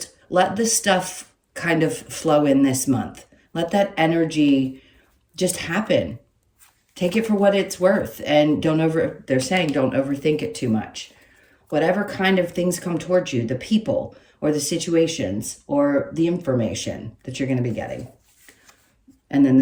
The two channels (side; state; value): both; identical; correlation 1.00